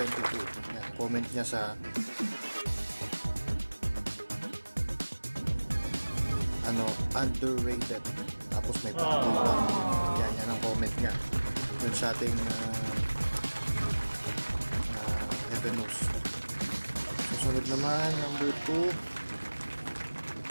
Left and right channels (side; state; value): both; inverted; correlation -1.00